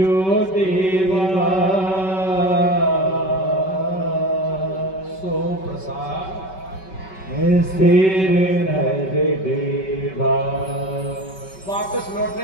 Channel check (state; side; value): late; right; 5.3 ms